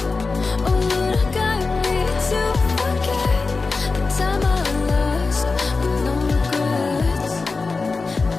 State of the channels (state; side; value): quieter; right; 4.1 dB